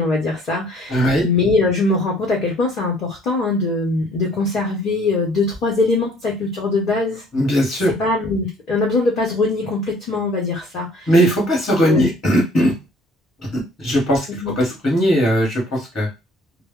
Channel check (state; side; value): normal; both; correlation 0.58